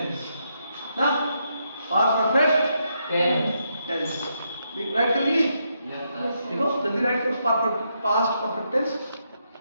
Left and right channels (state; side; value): inverted; both; correlation -0.80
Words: ना, पास्ट परफेक्ट टेंस राइट कर लिए? देखो जल्दी राइट करो, पास्ट परफेक्ट टेंस